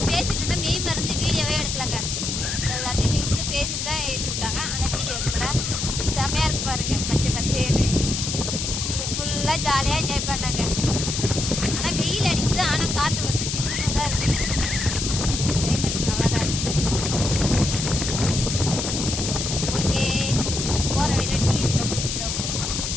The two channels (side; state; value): left; noise; hiss, 3 dB below the sound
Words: பேசிட்டு இருந்தால் மெய் மருந்து வீடியோவே எடுக்கலாங்க. எல்லாத்தையும் நின்று பேசிட்டு தான் ஏற்றி விட்டாங்க. ஆனால் வீடியோ எடுக்கல. செம்மையாக இருக்குது பாருங்கள், பச்சை பச்சேன்னு. நீங்கள் ஃபுல்லாக ஜாலியாக என்ஜாய் பண்ணாங்க. ஆனால் வெயில் அடிக்குது, ஆனால் காற்று வந்து சிக்கனாக தான் இருக்குது. கிளைமேட் நல்லா தான் இருக்குது. ஓகே, போகிற வழியில் டீ இருக்க குடிச்சுட்டு